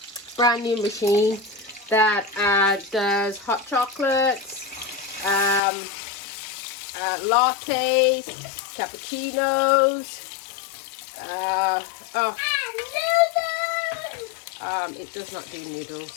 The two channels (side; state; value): right; drops out; at 5.6 s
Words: machine that does hot chocolates, lattes, cappuccinos. It does not do